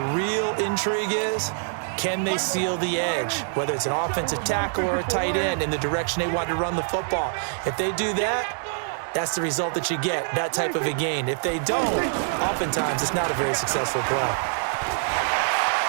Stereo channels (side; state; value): left; silent; 62 dB below the other